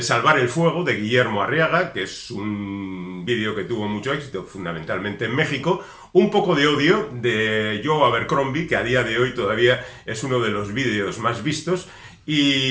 Salvar el fuego, de Guillermo Arriaga, que es un vídeo que tuvo mucho éxito, fundamentalmente en México. Un poco de odio, de Joe Abercrombie, que a día de hoy todavía es uno de los vídeos más vistos.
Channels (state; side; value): identical; both; correlation 1.00